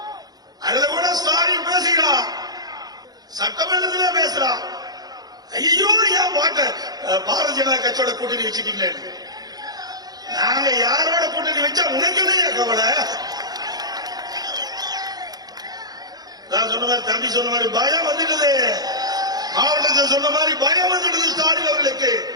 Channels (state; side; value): late; left; 0.19 ms